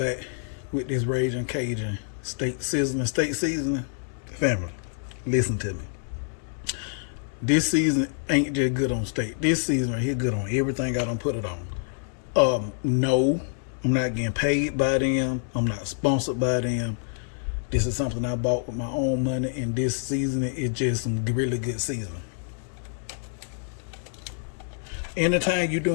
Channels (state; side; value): silent; right; digital silence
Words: with this Raging Cajun steak seasoning. Family, listen to me. This season ain't just good on steak. This season right here good on everything I done put it on. No, I'm not getting paid by them. I'm not sponsored by them. This is something I bought with my own money, and this seasoning is just some really good seasoning. Anytime you're